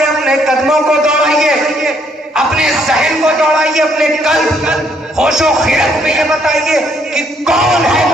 اپنے قدموں کو دوڑائیے، اپنے ذہن کو دوڑائیے، اپنے قلب ہوش و خیرت میں یہ بتائیے کہ کون ہے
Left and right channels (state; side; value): normal; both; correlation 0.69